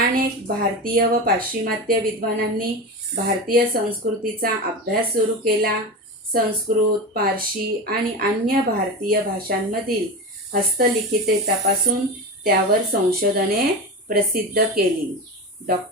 भारतीय व पाश्चिमात्य विद्वानांनी भारतीय संस्कृतीचा अभ्यास सुरू केला. संस्कृत, पारशी आणि अन्य भारतीय भाषांमधील हस्तलिखिते तपासून त्यावर संशोधने प्रसिद्ध केली.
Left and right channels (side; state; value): both; normal; correlation 0.24